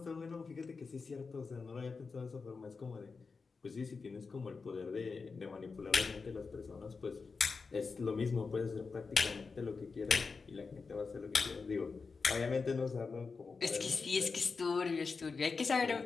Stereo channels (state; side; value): quieter; right; 4.7 dB